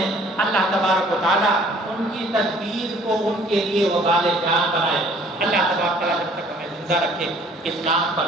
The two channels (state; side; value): normal; both; correlation 0.56